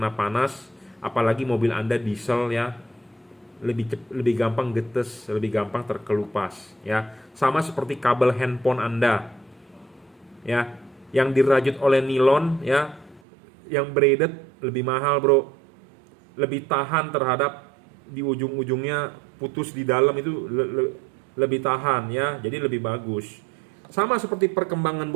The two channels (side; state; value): left; drops out; at 13.2 s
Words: panas, apalagi mobil Anda diesel ya. Lebih gampang getes, lebih gampang terkelupas ya. Sama seperti kabel handphone Anda. Ya, yang dirajut oleh nilon ya, yang braided lebih mahal, Bro. Lebih tahan terhadap di ujung-ujungnya putus di dalam itu lebih tahan ya, jadi lebih bagus. Sama seperti perkembangan